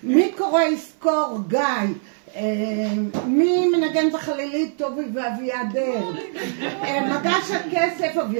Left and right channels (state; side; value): silent; left; 58 dB below the other